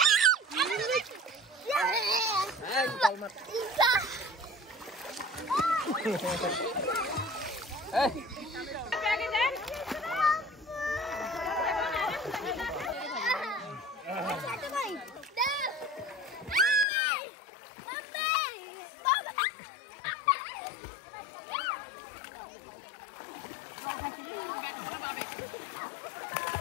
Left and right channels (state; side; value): drops out; right; at 16.9 s